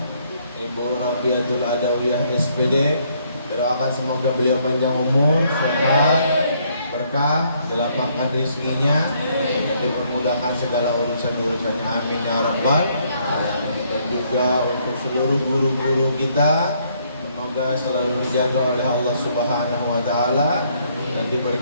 Ibu Rabiatul Adawiyah SPD. Doakan semoga beliau panjang umur, sehat, berkah, dilapangkan rezekinya, dan dipermudahkan segala urusan-urusannya. Amin ya rabbal. Dan juga untuk seluruh guru-guru kita, semoga selalu dijaga oleh Allah Subhanahu wa taala dan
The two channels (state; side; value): inverted; both; correlation -0.69